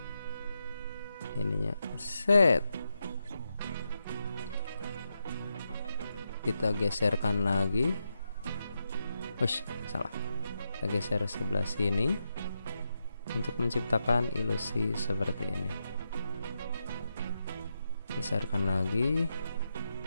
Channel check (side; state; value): both; inverted; correlation -0.85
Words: Ininya set. Kita geserkan lagi. Salah. Kita geser sebelah sini untuk menciptakan ilusi seperti ini. Geserkan lagi.